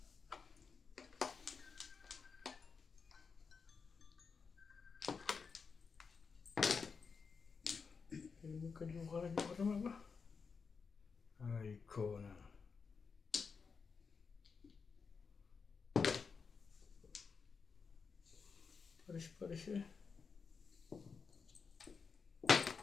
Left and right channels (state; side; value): quieter; right; 5.4 dB